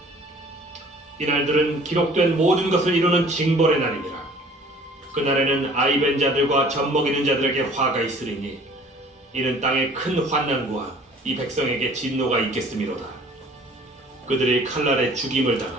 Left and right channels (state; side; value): normal; both; correlation 0.51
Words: 이날들은 기록된 모든 것을 이루는 징벌의 날이니라. 그날에는 아이 벤 자들과 젖 먹이는 자들에게 화가 있으리니 이는 땅에 큰 환난과 이 백성에게 진노가 있겠음이로다. 그들이 칼날에 죽임을